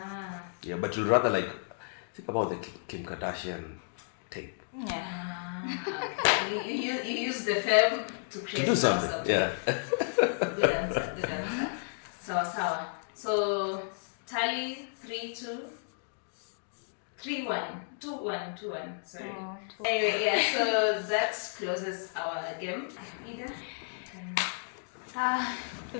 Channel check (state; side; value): silent; right; digital silence